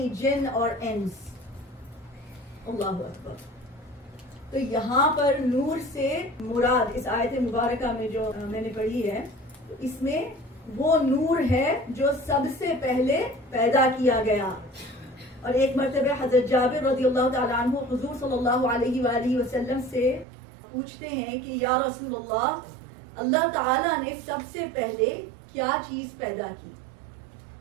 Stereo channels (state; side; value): drops out; left; at 20.2 s